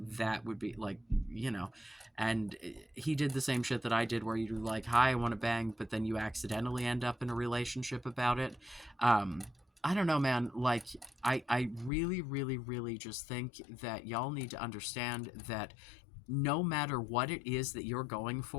that would be like, and he did the same shit that I did, where you're like, hi, I want to bang, but then you accidentally end up in a relationship about it. I don't know, man. Like, I really, really, really just think that y'all need to understand that no matter what it is that you're going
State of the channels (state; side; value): drops out; right; at 11.9 s